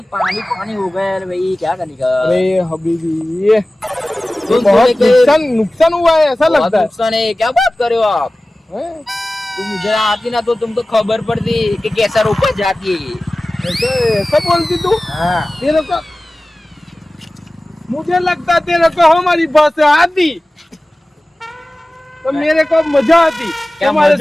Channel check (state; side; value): normal; both; correlation 0.97